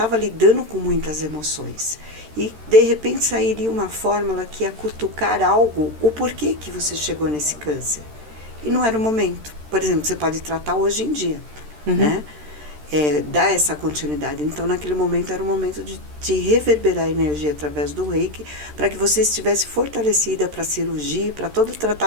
lidando com muitas emoções. E, de repente, sairia uma fórmula que ia cutucar algo, o porquê que você chegou nesse câncer. E não era o momento. Por exemplo, você pode tratar hoje em dia, né? Dar essa continuidade. Então, naquele momento, era o momento de reverberar a energia através do Reiki, para que você estivesse fortalecida para a cirurgia, para todo o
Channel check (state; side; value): late; left; 13 ms